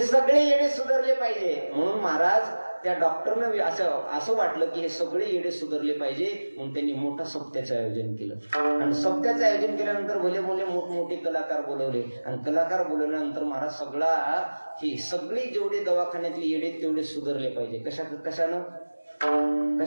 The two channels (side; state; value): both; inverted; correlation -1.00